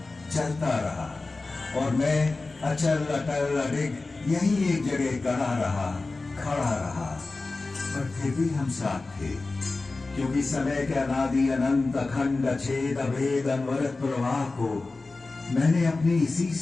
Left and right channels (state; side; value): quieter; right; 3.5 dB